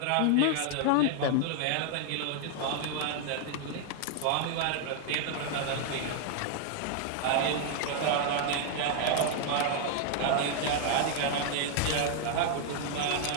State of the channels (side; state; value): both; different; correlation 0.00